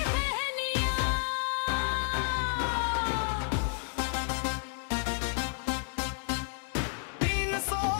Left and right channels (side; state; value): right; silent; digital silence